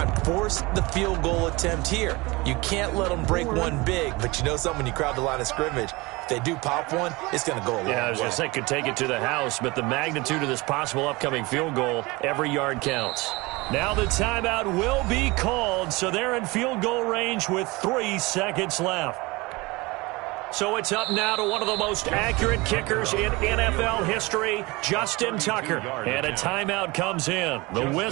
and force the field goal attempt here. You can't let them break one big, but you know something, when you crowd the line of scrimmage, if they do pop one, it's going to go a long way. Yeah, I was going to say, could take it to the house, but the magnitude of this possible upcoming field goal, every yard counts. Now the timeout will be called, so they're in field goal range with 3 seconds left. So it's up now to one of the most accurate kickers in NFL history, Justin Tucker. And a timeout comes in. The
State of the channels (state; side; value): quieter; left; 23.5 dB